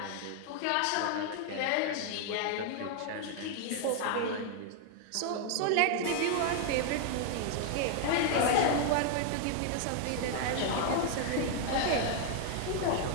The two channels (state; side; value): different; both; correlation 0.00